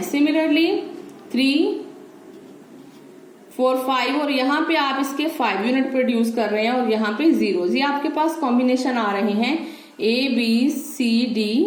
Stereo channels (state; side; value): identical; both; correlation 1.00